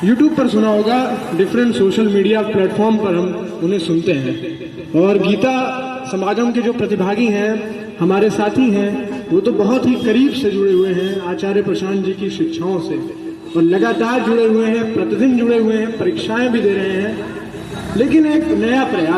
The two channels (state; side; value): identical; both; correlation 1.00